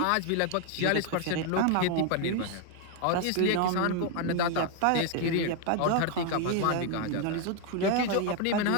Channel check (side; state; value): both; different; correlation 0.01